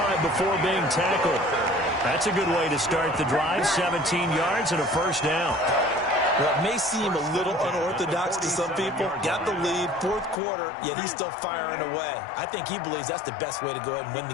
before being tackled. That's a good way to start the drive, 17 yards and a 1st down. Well, it may seem a little unorthodox to some people. Got the lead, 4th quarter, yet he's still firing away. I think he believes that's the best way to go ahead and win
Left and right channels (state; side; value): drops out; right; at 10.4 s